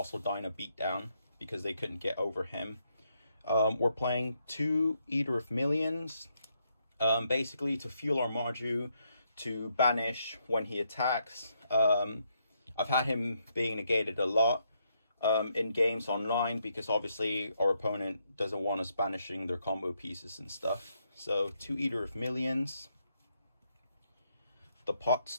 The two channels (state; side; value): inverted; both; correlation -0.77